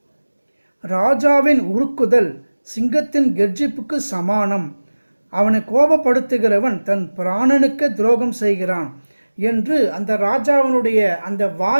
ராஜாவின் உருக்குதல் சிங்கத்தின் கெர்ச்சிப்புக்கு சமானம், அவனை கோபப்படுத்துகிறவன் தன் பிராணனுக்கு துரோகம் செய்கிறான் என்று அந்த ராஜாவினுடைய அந்த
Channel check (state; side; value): inverted; both; correlation -1.00